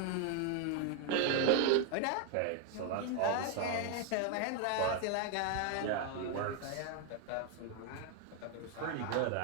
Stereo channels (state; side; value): different; both; correlation 0.01